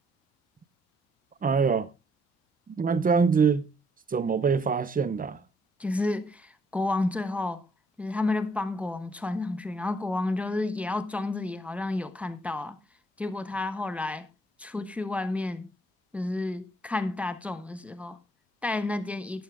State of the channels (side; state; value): both; normal; correlation 0.69